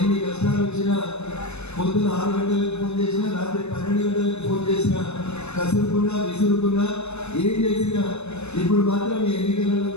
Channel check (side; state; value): right; late; 0.81 ms